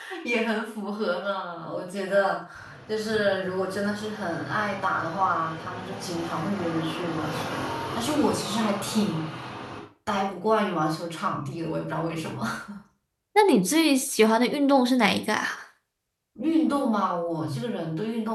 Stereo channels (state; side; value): identical; both; correlation 1.00